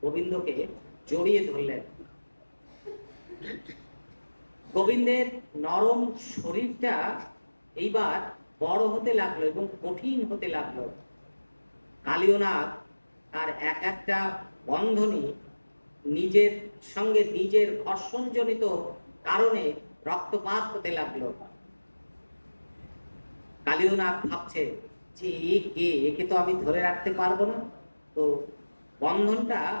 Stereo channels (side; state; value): both; inverted; correlation -1.00